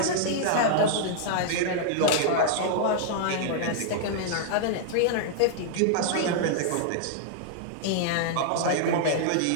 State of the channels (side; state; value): both; different; correlation -0.01